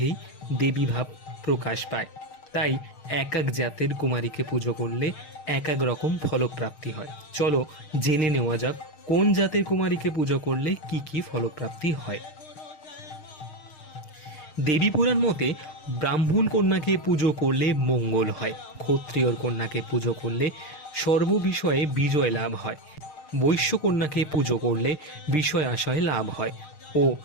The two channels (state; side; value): late; right; 6.5 ms